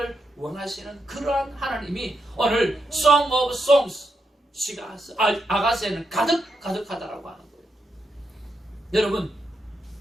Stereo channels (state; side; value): normal; both; correlation 0.84